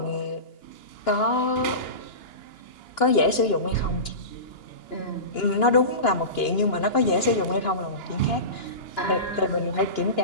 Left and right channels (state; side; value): late; right; 2.9 ms